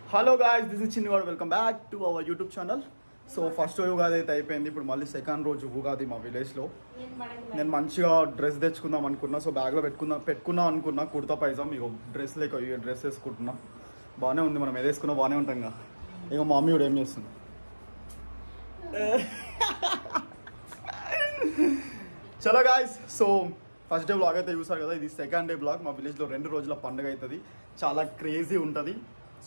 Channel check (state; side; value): inverted; both; correlation -1.00